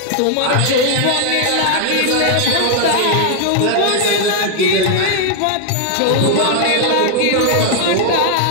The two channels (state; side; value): different; both; correlation 0.00